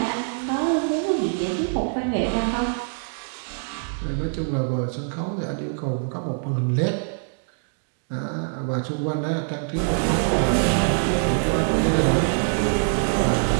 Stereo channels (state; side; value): silent; left; 62 dB below the other